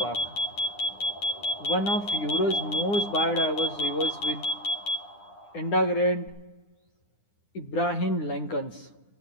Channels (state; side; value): late; right; 9.9 ms